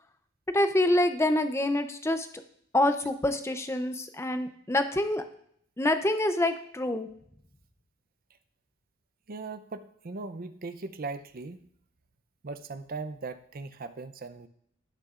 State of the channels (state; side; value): normal; both; correlation 0.69